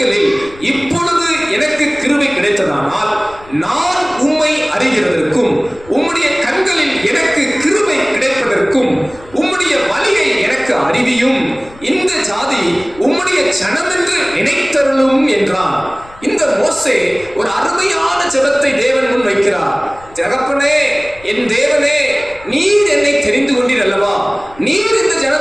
இப்பொழுது எனக்கு கிருபை கிடைத்ததானால் நான் உம்மை அறிகிறதற்கும், உம்முடைய கண்களில் எனக்கு கிருபை கிடைப்பதற்கும் உம்முடைய வழியை எனக்கு அறிவியும். இந்த ஜாதி உம்முடைய ஜனம் என்று நினைத்தருளும் என்றான். இந்த மோசே ஒரு அருமையான ஜெபத்தை தேவன் முன் வைக்கிறார். தகப்பனே, என் தேவனே, நீர் என்னை தெரிந்து கொண்டீர் அல்லவா? நீர் இந்த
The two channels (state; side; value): noise; left; rumble, 22 dB below the sound